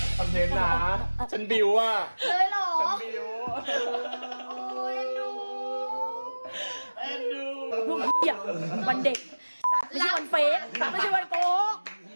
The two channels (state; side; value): inverted; both; correlation -1.00